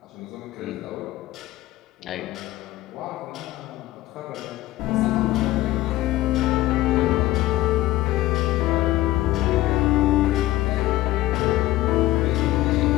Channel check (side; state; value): right; quieter; 16.5 dB